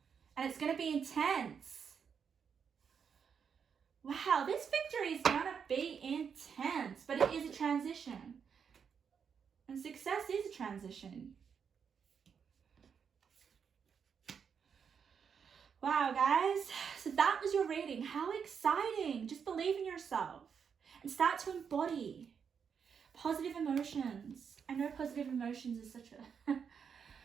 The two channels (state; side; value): quieter; left; 6.8 dB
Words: And it's going to be intense. Wow, this victory is going to be intense, but it is a transition. And success is a transition. Wow, guys. So that was your reading. How exciting. Just believe in yourself and start to embody positive emotions. I know positive emotions is such a...